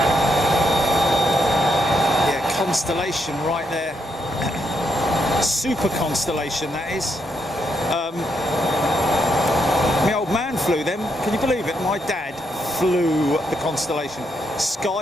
Constellation right there. Super Constellation, that is. My old man flew them. Can you believe it? My dad flew the Constellation.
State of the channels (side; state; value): both; normal; correlation 0.79